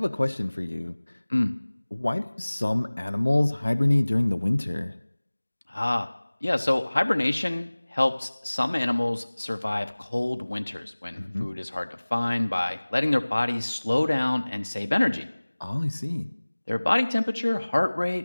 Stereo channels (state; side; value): inverted; both; correlation -1.00